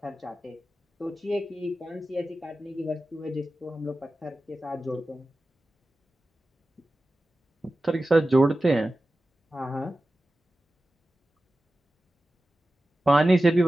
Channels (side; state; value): both; normal; correlation 0.94